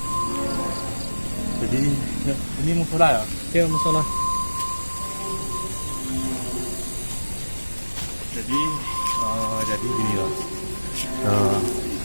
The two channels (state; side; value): inverted; both; correlation -1.00